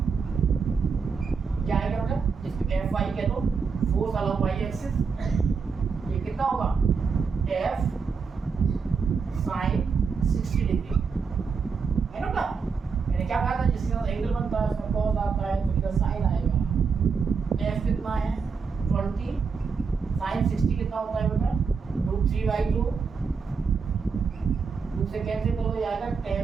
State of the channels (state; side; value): quieter; left; 5.5 dB